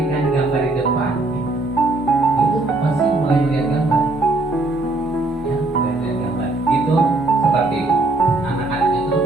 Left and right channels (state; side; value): quieter; left; 3.0 dB